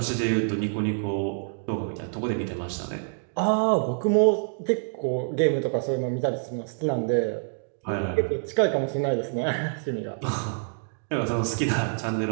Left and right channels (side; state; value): left; silent; 60 dB below the other